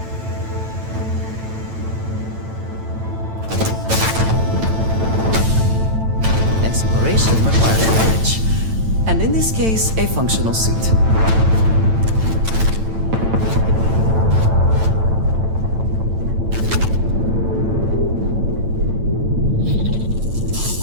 Exploration required courage. And in this case, a functional suit.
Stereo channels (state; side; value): late; left; 9.0 ms